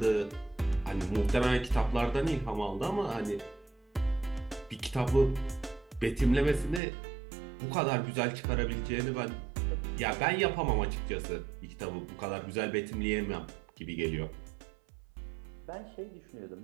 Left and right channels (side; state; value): left; drops out; at 6.8 s